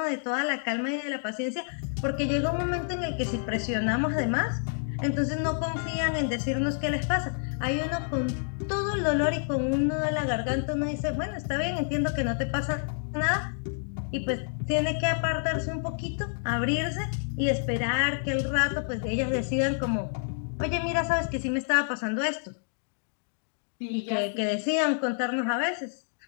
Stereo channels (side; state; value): right; silent; digital silence